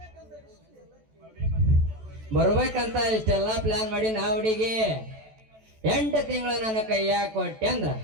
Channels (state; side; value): late; left; 14 ms